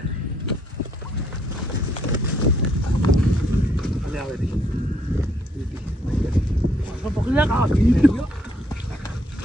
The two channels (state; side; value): normal; both; correlation 0.70